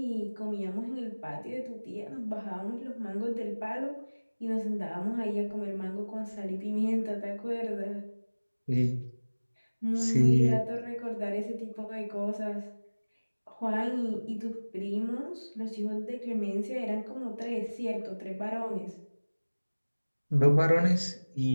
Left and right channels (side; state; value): both; inverted; correlation -1.00